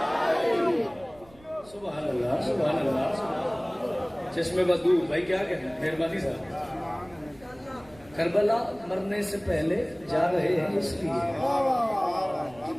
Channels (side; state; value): right; noise; rumble, 25 dB below the sound